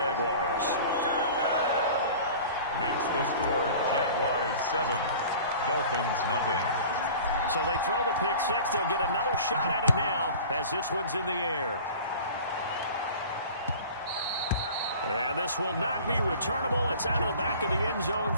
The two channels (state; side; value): inverted; both; correlation -0.42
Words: Makes the score Jaguars 7, Dolphins nothing. So they throw the pick six. They'll get another shot at it now as this one's in the air. And this will not be returnable. It's out of the back of the end zone